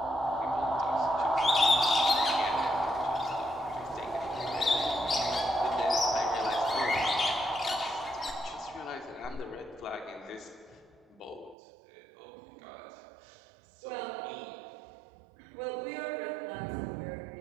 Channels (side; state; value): left; drops out; at 11.6 s